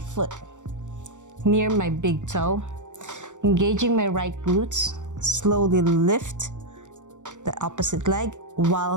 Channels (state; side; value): late; left; 0.85 ms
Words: near my big toe, engaging my right glutes, slowly lift the opposite leg